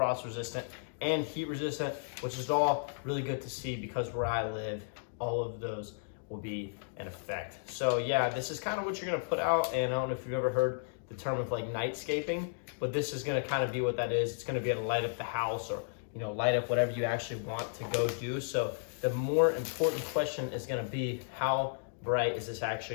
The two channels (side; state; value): right; silent; digital silence